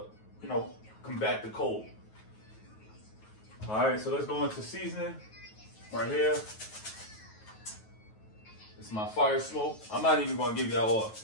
you know, combat the cold. All right, so let's go into seasoning right here. It's my fire smoke. I'm not even gonna give y'all all.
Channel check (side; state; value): right; late; 9.3 ms